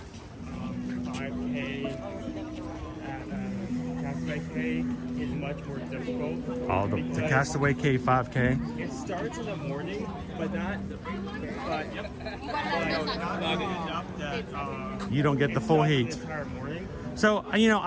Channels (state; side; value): identical; both; correlation 1.00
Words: 5K at Castaway K is much more difficult. Oh, the Castaway K 5K. It starts in the morning, but not enough that you don't get the full heat. The entire morning. So, you know,